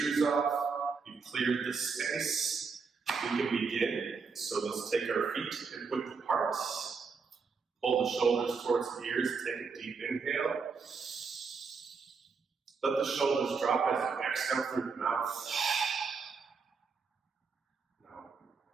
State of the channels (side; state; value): left; quieter; 5.1 dB